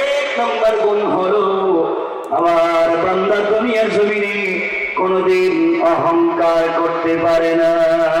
নম্বর গুণ হলো আমার বান্দা দুনিয়ার জমিনে কোনদিন অহংকার করতে পারে না।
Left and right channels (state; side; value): identical; both; correlation 1.00